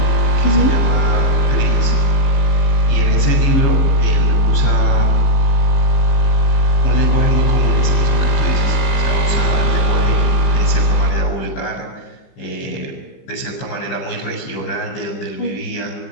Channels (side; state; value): right; late; 15 ms